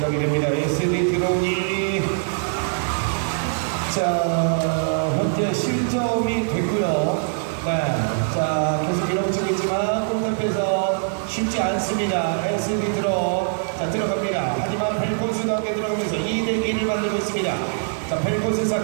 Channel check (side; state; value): left; silent; digital silence